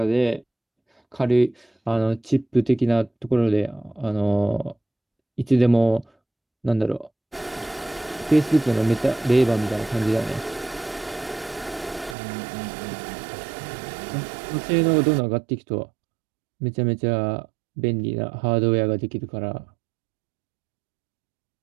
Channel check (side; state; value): left; drops out; at 12.2 s